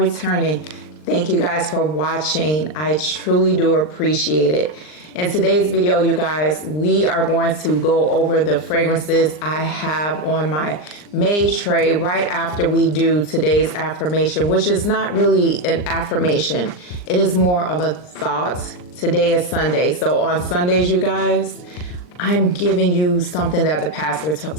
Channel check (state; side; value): late; right; 39 ms